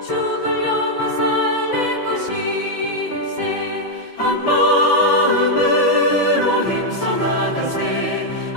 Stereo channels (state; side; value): late; right; 6.0 ms